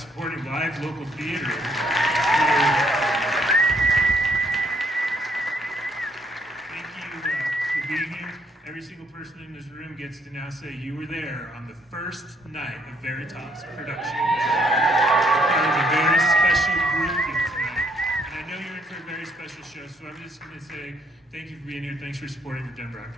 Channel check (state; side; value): normal; both; correlation 0.68